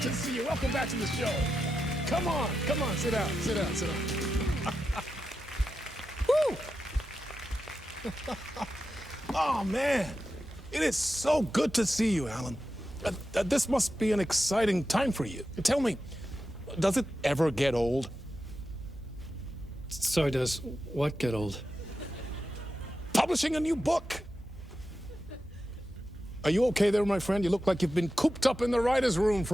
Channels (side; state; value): both; normal; correlation 0.90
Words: to see you. Welcome back to the show. Come on, sit down. Woo! Oh, man. It is so good to see you, Alan. This must be an exciting time for you. Tell me, does it ever get old? So does what get old? Publishing a new book. Are you okay there, my friend? You look like you've been cooped up in the writer's room